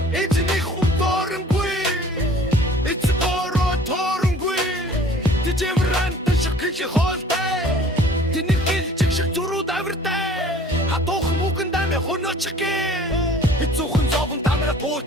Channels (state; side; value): normal; both; correlation 0.50